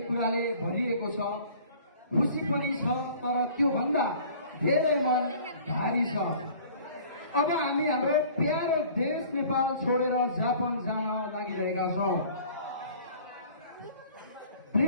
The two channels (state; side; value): inverted; both; correlation -0.49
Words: कुराले भरिएको छ, खुसी पनि छ, तर त्योभन्दा धेरै मन भारी छ। अब हामी हाम्रो प्यारो देश नेपाल छोडेर जापान जान लागिरहेका छौँ।